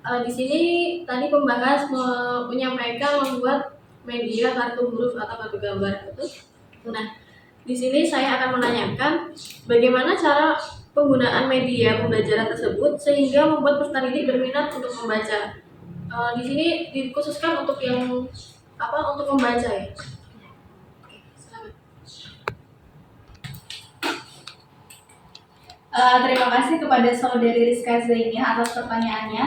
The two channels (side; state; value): both; identical; correlation 1.00